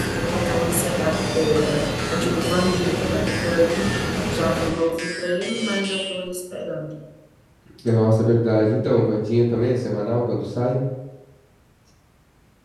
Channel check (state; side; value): identical; both; correlation 1.00